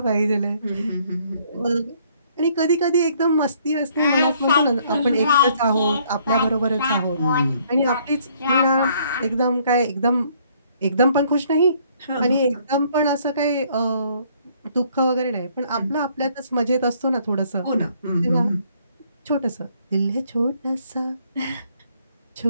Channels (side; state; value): both; inverted; correlation -0.64